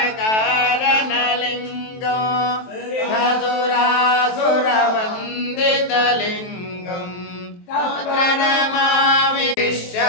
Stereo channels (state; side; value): late; right; 23 ms